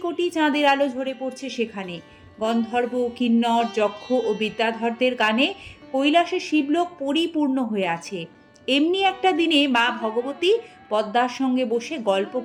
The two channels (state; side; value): identical; both; correlation 1.00